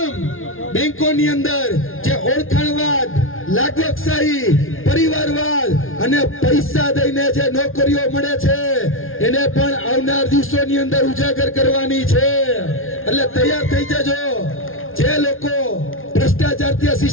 બેંકોની અંદર જે ઓળખાણવાદ, લાગવકશાહી, પરિવારવાદ અને પૈસા દઈને જે નોકરીઓ મળે છે એને પણ આવનાર દિવસોની અંદર ઉજાગર કરવાની છે. એટલે તૈયાર થઈ જજો. જે લોકો ભ્રષ્ટાચાર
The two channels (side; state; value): right; late; 0.60 ms